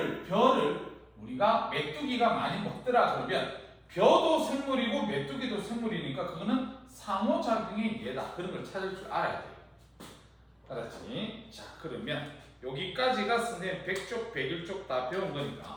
벼를 우리가 메뚜기가 많이 먹더라 그러면 벼도 생물이고 메뚜기도 생물이니까 그거는 상호작용의 예다 그런 걸 찾을 줄 알아야 돼요. 알았지? 자 그러면 여기까지가 선생님 100쪽 101쪽 다 배운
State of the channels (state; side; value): identical; both; correlation 1.00